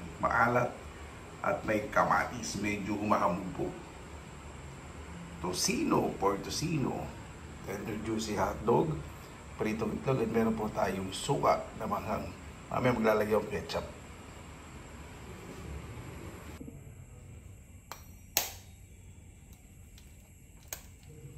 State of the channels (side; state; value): both; identical; correlation 1.00